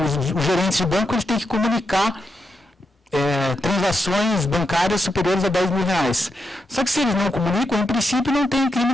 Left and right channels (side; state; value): both; normal; correlation 0.84